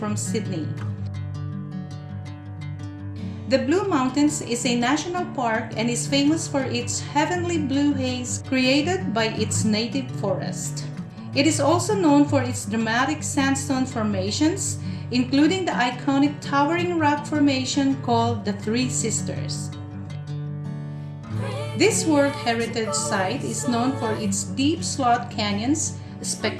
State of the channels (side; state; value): both; identical; correlation 1.00